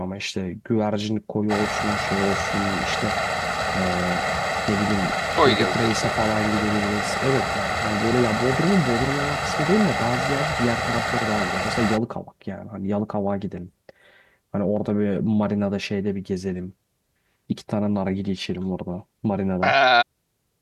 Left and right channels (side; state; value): both; identical; correlation 1.00